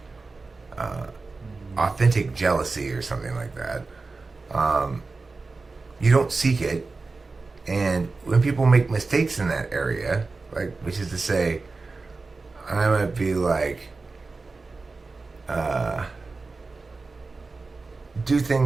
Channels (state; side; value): quieter; left; 3.8 dB